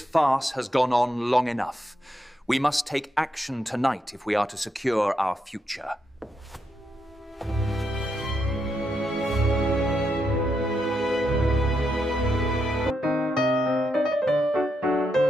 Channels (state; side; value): normal; both; correlation 0.81